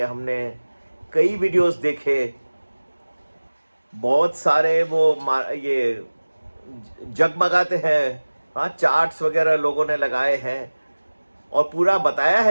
हमने कई वीडियोस देखे, बहुत सारे ये जगमगाते हैं, हाँ, चार्ट्स वगैरह लोगों ने लगाए हैं और पूरा बताया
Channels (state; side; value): inverted; both; correlation -1.00